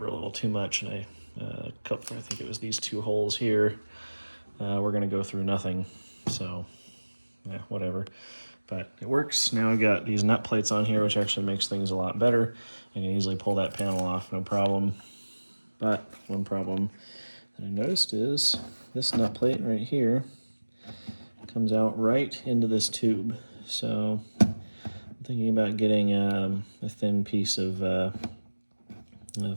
a little too much, and I think it was these 2 holes here. We're gonna go through nothing, so yeah, whatever. But it works. Now I've got these nut plates on here, which actually makes things a lot better. I can easily pull that panel off, no problem. But one problem that I noticed is this nut plate right here comes out right into this tube. So I'm thinking about getting a thin piece of a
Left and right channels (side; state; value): both; inverted; correlation -1.00